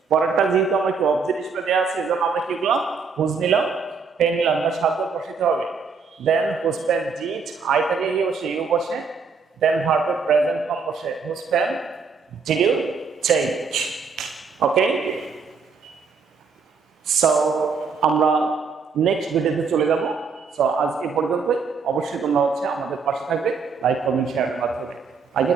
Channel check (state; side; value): quieter; left; 5.2 dB